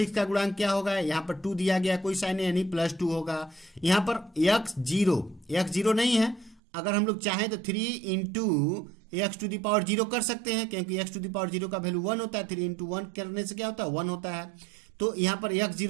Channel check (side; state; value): left; drops out; at 6.6 s